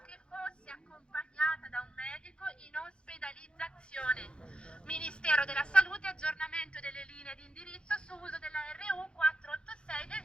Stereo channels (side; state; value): right; late; 0.055 ms